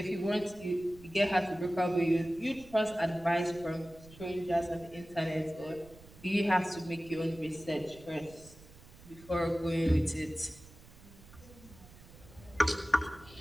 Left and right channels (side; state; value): right; noise; rumble, 21 dB below the sound